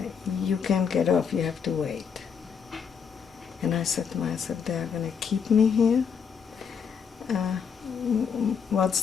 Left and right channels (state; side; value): quieter; right; 6.8 dB